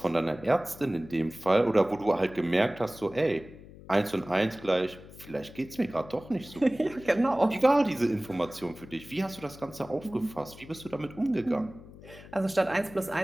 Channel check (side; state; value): left; noise; hum, 18 dB below the sound